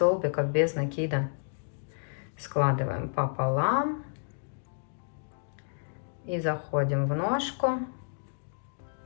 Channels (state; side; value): silent; right; digital silence